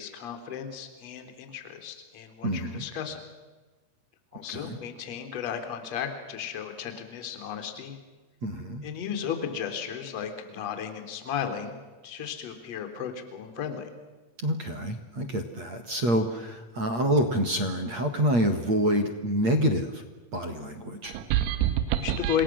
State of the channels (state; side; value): late; left; 8.6 ms